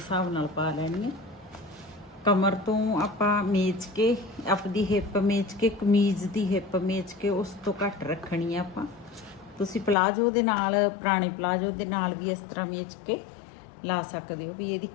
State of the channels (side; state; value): right; drops out; at 10.0 s